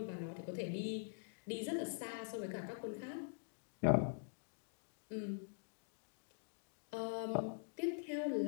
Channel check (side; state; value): right; silent; digital silence